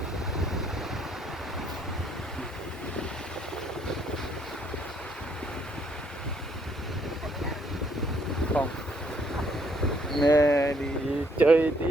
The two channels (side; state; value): both; normal; correlation 0.68